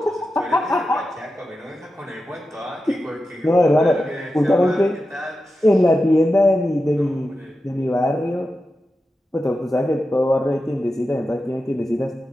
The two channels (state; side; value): normal; both; correlation 0.91